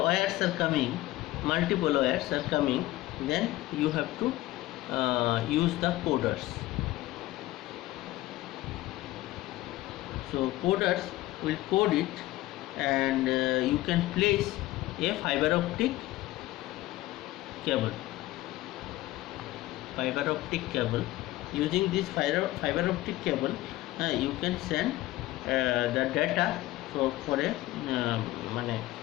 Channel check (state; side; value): quieter; right; 17.0 dB